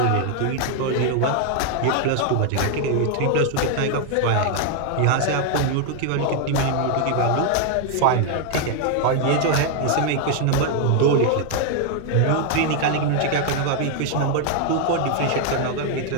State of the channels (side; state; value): both; different; correlation 0.00